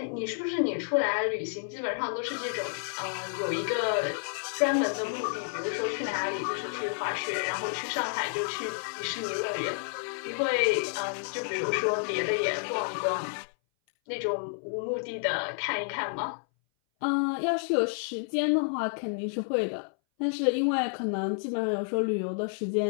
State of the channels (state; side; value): silent; right; 58 dB below the other